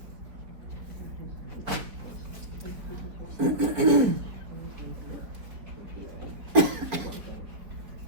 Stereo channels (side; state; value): left; late; 4.2 ms